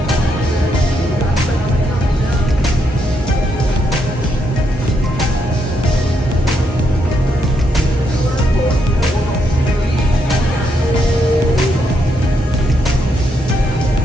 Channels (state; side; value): normal; both; correlation 0.78